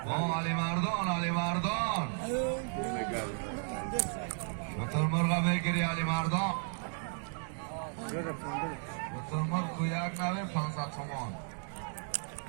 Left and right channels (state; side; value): silent; left; 55 dB below the other